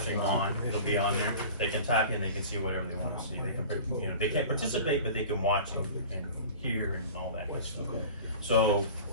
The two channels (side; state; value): both; inverted; correlation -0.39